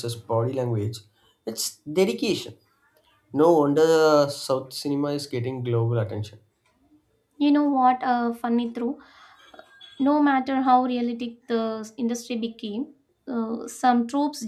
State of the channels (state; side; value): identical; both; correlation 1.00